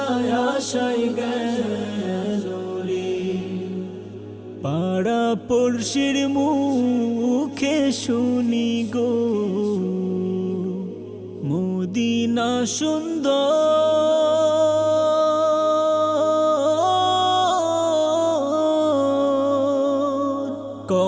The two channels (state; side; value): identical; both; correlation 1.00